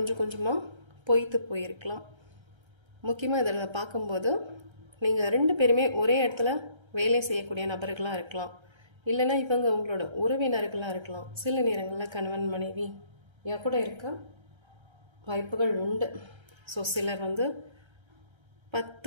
கொஞ்சமாக பொய்த்து போயிருக்கலாம். முக்கியமாக இதில் பார்க்கும்போது நீங்கள் ரெண்டு பேருமே ஒரே இடத்துல வேலை செய்யக்கூடிய நபர்களாக இருக்கலாம். இல்லைன்னா இவங்க உங்களோட உறவினர்களாக இருக்கலாம். சில நேரங்களில் கணவன் மனைவி கூட இருக்க வாய்ப்புகள் உண்டு. ஸோ சிலர்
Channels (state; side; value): late; left; 1.3 ms